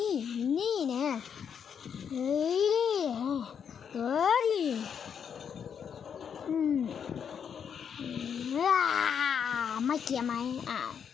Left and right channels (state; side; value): quieter; right; 7.5 dB